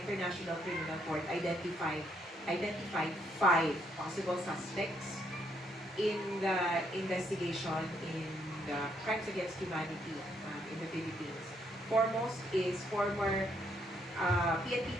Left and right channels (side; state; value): both; normal; correlation 0.73